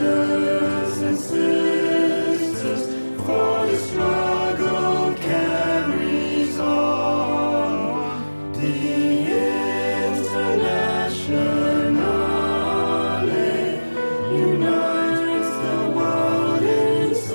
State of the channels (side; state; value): both; inverted; correlation -1.00